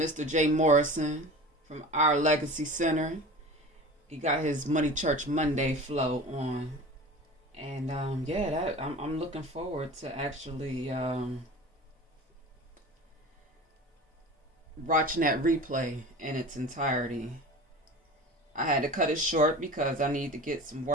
Jay Morrison from Our Legacy Center. He got his Money Church Monday flow on. And I'm looking forward to actually watching that replay in its entirety. I had to cut it short because I needed to get some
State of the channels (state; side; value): normal; both; correlation 0.36